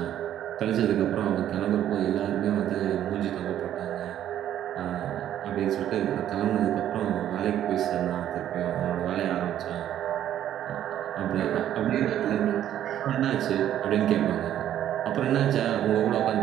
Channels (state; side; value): quieter; left; 11.3 dB